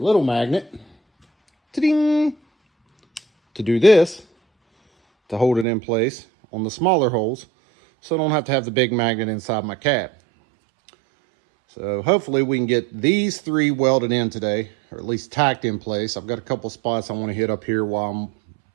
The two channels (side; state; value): left; drops out; at 5.7 s